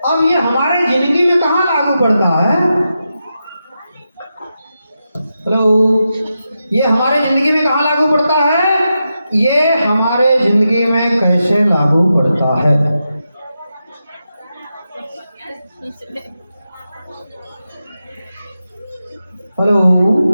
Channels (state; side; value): inverted; both; correlation -0.88